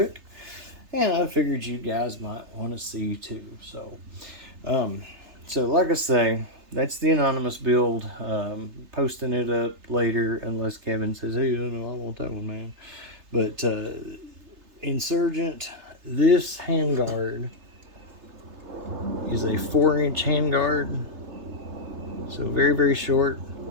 And I figured you guys might want to see too. So like I say, that's the Anonymous build. Posting it up later unless Kevin says, hey, no, I want that one, man. But Insurgent, this handguard is a 4-inch handguard. So very, very short.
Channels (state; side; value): late; left; 3.3 ms